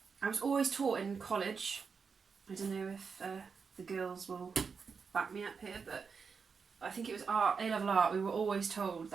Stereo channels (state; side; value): quieter; left; 5.6 dB